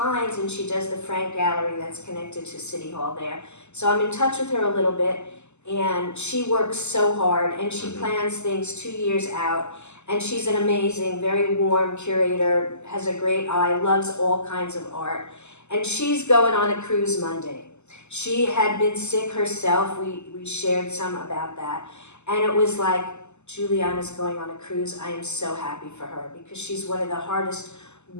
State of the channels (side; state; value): right; late; 0.83 ms